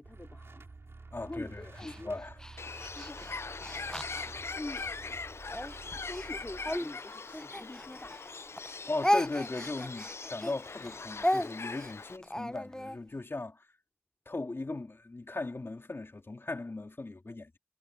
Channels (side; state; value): both; normal; correlation 0.83